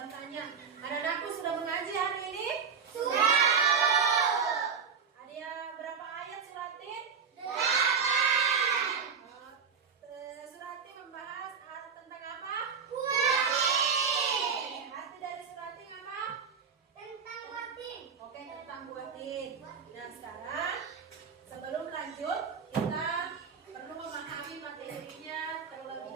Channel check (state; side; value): quieter; left; 6.1 dB